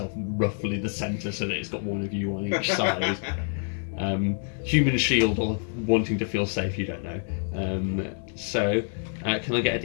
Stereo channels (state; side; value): silent; right; 60 dB below the other